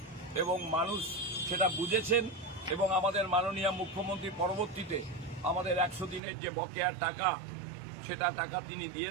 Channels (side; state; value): left; drops out; at 6.2 s